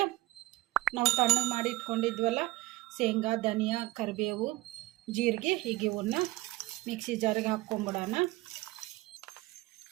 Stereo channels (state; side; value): quieter; left; 19.3 dB